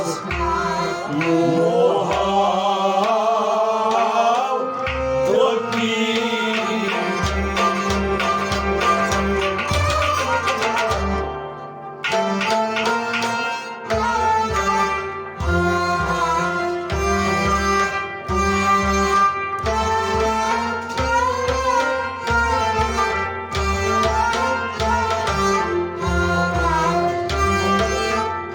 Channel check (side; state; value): both; identical; correlation 1.00